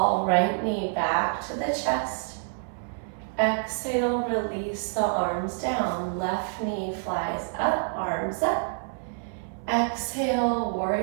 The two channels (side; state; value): left; silent; 60 dB below the other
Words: right knee back to the chest. Exhale, release the arms down. Left knee flies up, arms up. Exhale,